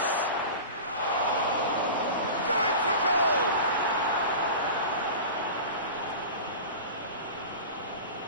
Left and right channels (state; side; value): inverted; both; correlation -0.33